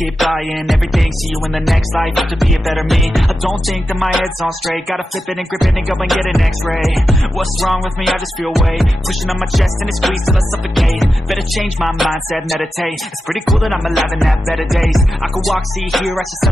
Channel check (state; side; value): normal; both; correlation 0.90